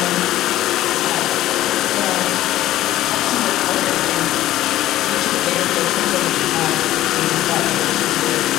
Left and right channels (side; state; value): right; quieter; 14.3 dB